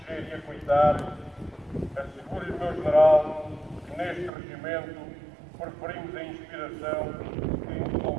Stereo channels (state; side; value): drops out; left; at 4.3 s